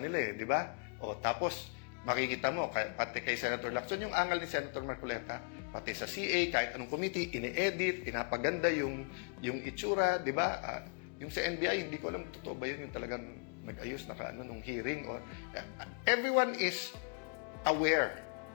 di ba? O tapos, makikita mo, pati kay Senator Lacson, yung angal ni Senator Marcoleta, pati sa CA, kahit anong committee, ini-edit, pinapaganda yung itsura, di ba? Yung sa NBI, hindi ko alam, totoo ba yun, yung talagang nag-ayos nung hearing. Everyone is aware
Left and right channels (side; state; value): right; quieter; 37.9 dB